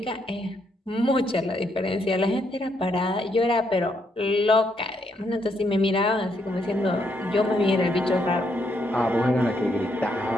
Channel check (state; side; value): normal; both; correlation 0.75